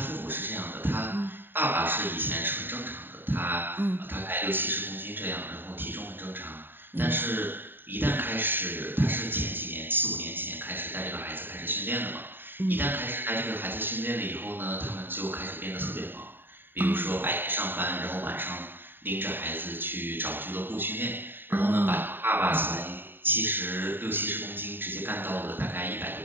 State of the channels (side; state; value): left; late; 0.095 ms